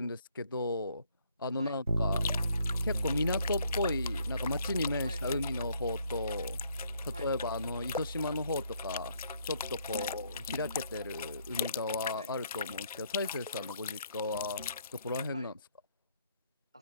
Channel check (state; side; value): inverted; both; correlation -0.69